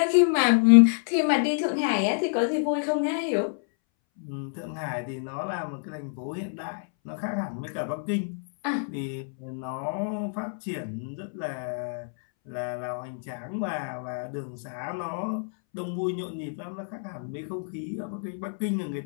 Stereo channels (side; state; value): right; silent; 59 dB below the other